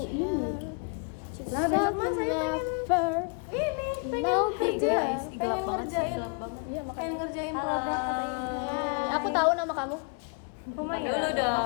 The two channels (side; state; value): right; quieter; 36.9 dB